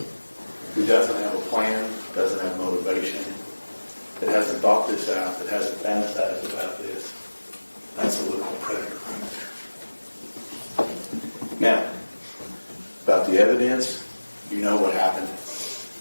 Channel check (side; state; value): both; inverted; correlation -1.00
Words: who doesn't have a plan, doesn't have motivation, that hasn't thought this out, that hasn't fantasized about this. That's the look of a predator right there. Now, about the evidence, you know what happened.